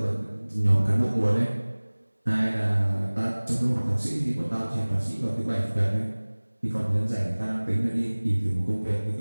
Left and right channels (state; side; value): inverted; both; correlation -1.00